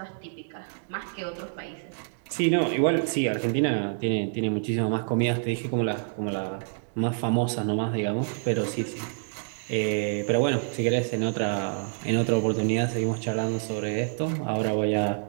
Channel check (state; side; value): silent; left; 60 dB below the other